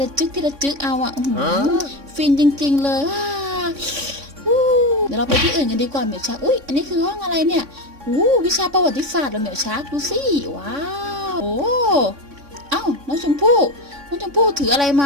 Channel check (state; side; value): late; left; 3.6 ms